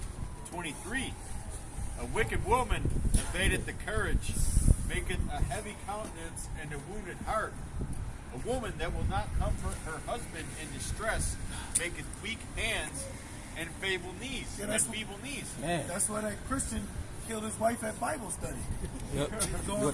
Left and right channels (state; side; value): identical; both; correlation 1.00